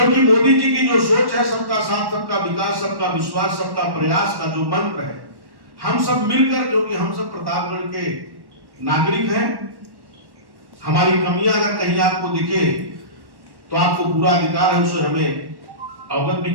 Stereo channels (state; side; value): late; left; 1.1 ms